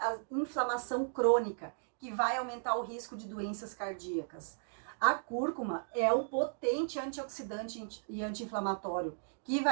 a inflamação crônica, que vai aumentar o risco de doenças cardíacas. A cúrcuma é um potente antioxidante e anti-inflamatório, que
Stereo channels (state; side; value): silent; left; digital silence